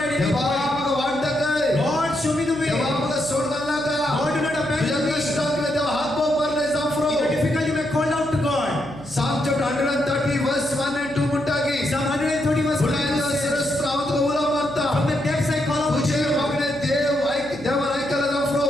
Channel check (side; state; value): right; noise; hum, 17 dB below the sound